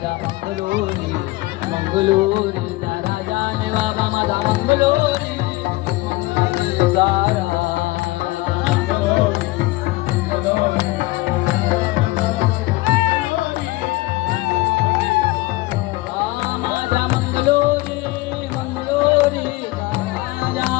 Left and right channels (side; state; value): right; quieter; 20.5 dB